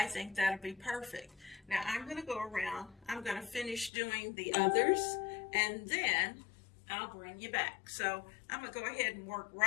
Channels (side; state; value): right; drops out; at 3.9 s